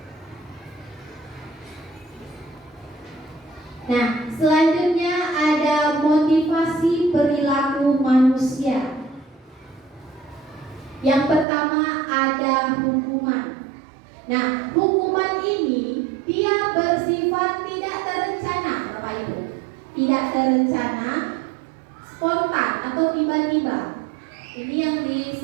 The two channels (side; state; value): left; drops out; at 11.5 s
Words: Nah, selanjutnya ada motivasi perilaku manusia. Yang pertama ada hukuman. Nah, hukuman ini dia bersifat tidak terencana, Bapak Ibu. Tidak terencana, spontan atau tiba-tiba. Ini yang